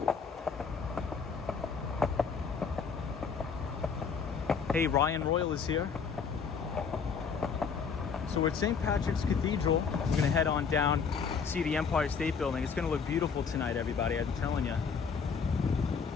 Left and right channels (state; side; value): quieter; right; 5.9 dB